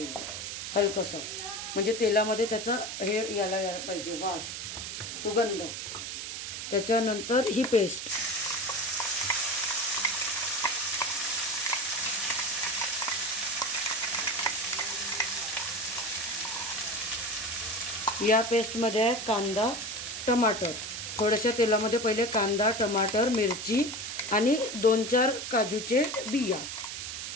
हलकंसं, म्हणजे तेलामध्ये त्याचा हे यायला पाहिजे वास, सुगंध. त्याच्यानंतर ही पेस्ट, या पेस्टमध्ये आहे कांदा, टमाटर. थोड्याशा तेलामध्ये पहिले कांदा, टमाटर, मिरची आणि 2-4 काजूचे बिया,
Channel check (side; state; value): right; noise; hiss, 6 dB below the sound